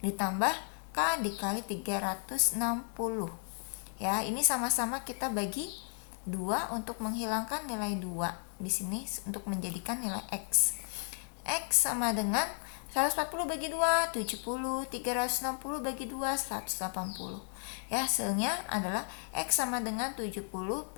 ditambah K dikali 360 ya. Ini sama-sama kita bagi 2 untuk menghilangkan nilai 2 di sini untuk menjadikan nilai X. X sama dengan 140 bagi 2 70, 360 bagi 2 180 ya. Hasilnya adalah X sama dengan 70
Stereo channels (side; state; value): right; silent; 55 dB below the other